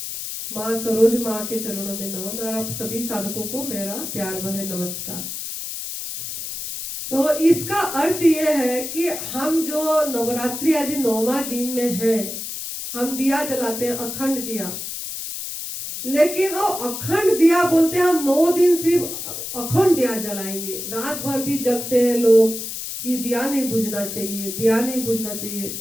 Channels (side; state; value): left; noise; hiss, 6 dB below the sound